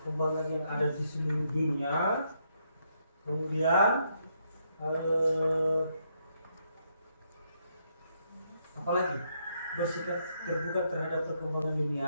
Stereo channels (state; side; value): inverted; both; correlation -0.76